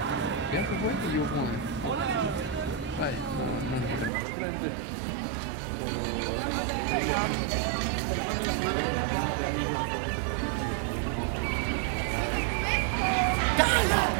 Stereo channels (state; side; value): drops out; left; at 4.1 s